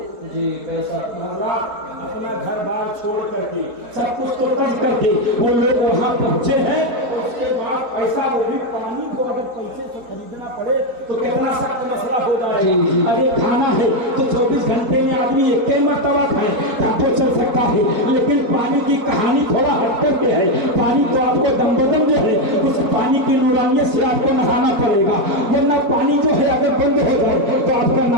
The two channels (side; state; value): left; late; 4.1 ms